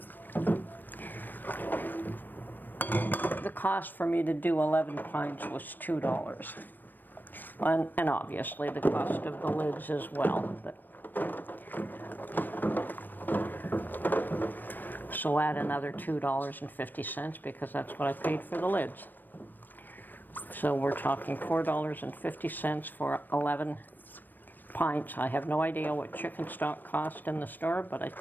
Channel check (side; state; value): right; late; 0.091 ms